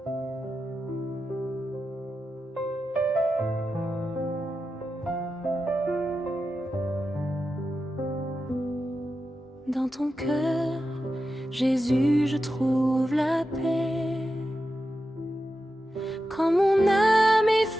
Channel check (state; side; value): normal; both; correlation 0.90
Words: Jésus, je trouve la paix. Quand mon âme est